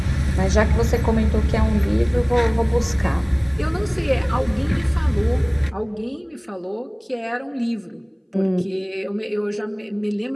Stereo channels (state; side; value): identical; both; correlation 1.00